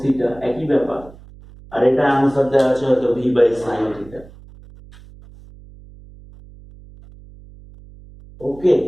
থিটা, একই ব্যাপার। আর এটা আনসার দেওয়া আছে হয়তো ভি বাই sin থিটা। ওকে,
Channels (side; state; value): right; noise; hum, 21 dB below the sound